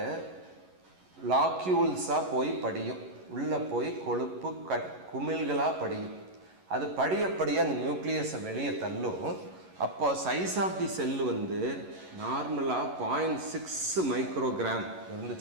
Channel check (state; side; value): late; left; 11 ms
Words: லாக்யூல்ஸாக போய் படியும். உள்ளே போய் கொழுப்பு குமிழ்களாக படியும். அது படிய அந்த நியூக்ளியஸை வெளியே தள்ளும். அப்போ சைஸ் ஆஃப் தி செல்லு நார்மலாக 0.6 மைக்ரோகிராம்